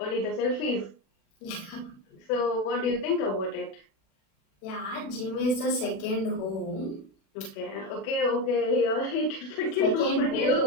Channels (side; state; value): right; late; 36 ms